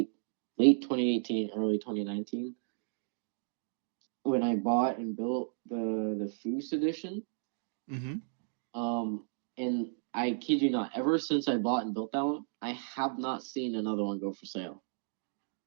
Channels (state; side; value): silent; left; digital silence